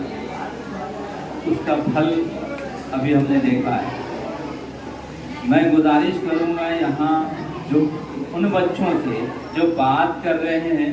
اس کا پھل ابھی ہم نے دیکھا ہے۔ میں گزارش کروں گا یہاں جو ان بچوں سے جو بات کر رہے ہیں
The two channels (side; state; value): both; identical; correlation 1.00